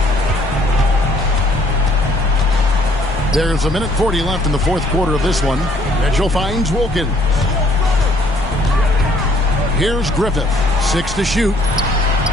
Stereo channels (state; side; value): noise; left; rumble, 10 dB below the sound